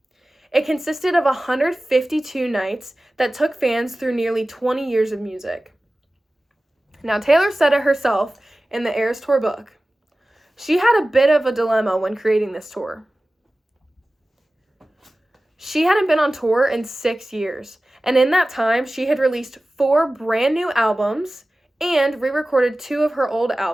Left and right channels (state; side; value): normal; both; correlation 0.96